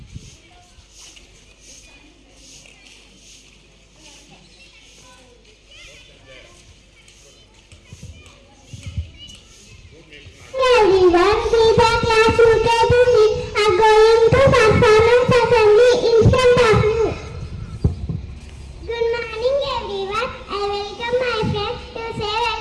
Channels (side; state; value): both; identical; correlation 1.00